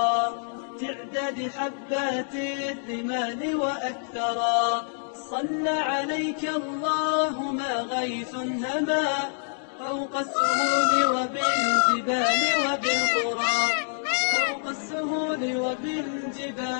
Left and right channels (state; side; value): silent; right; digital silence